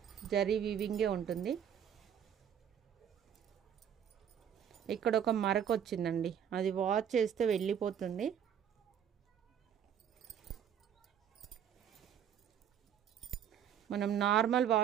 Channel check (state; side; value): quieter; left; 8.9 dB